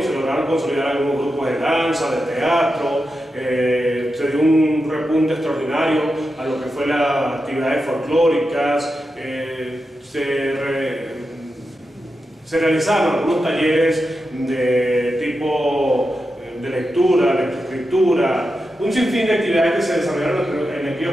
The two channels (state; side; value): normal; both; correlation 0.89